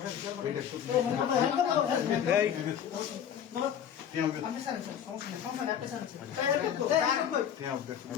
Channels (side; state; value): right; quieter; 9.0 dB